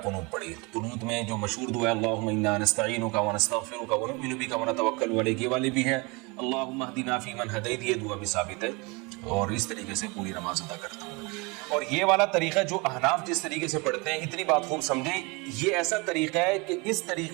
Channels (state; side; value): quieter; left; 27.7 dB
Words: قنوت پڑھی. قنوت میں جو مشہور دعا ہے اللہم انا نستعینک ونستغفرک ونؤمن بک ونتوکل علیک، یہ والی بھی ہے اللہم اہدنا فیمن ہدیت، یہ دعا بھی ثابت ہے. اور اس طریقے سے پوری نماز ادا کرتا ہوں. اور یہ والا طریقہ جو احناف جس طریقے سے پڑھتے ہیں، اتنی بات خوب سمجھیں، یہ ایسا طریقہ ہے کہ اس